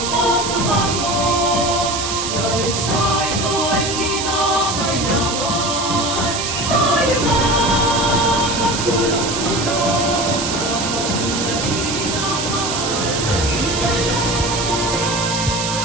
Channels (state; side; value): noise; right; hiss, 3 dB below the sound